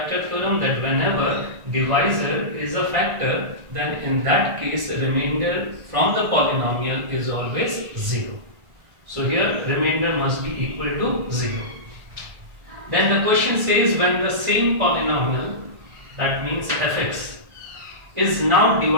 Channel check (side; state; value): left; late; 1.6 ms